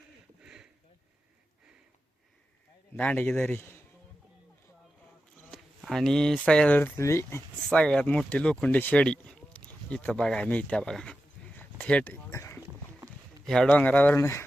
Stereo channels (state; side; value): normal; both; correlation 0.91